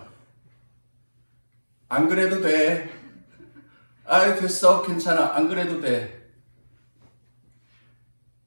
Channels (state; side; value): inverted; both; correlation -1.00